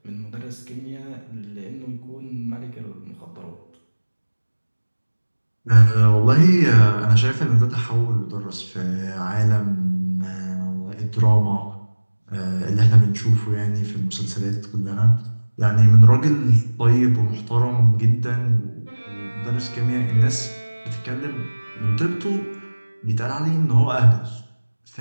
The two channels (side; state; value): both; inverted; correlation -1.00